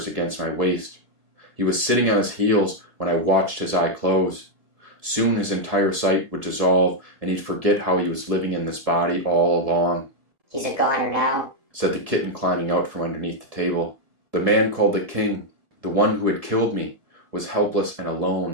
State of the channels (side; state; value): left; late; 1.7 ms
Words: against my waist. He was sitting on his heels when I watched his eye close. Soon his entire sight would dissolve, and he'd forget how he was living in this body all along. "He's a goner now," said the kitten climbing out from underneath the table. The man called the king, the one who had killed me, was helpless and